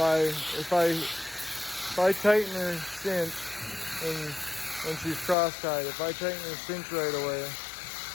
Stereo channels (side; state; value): right; drops out; at 5.4 s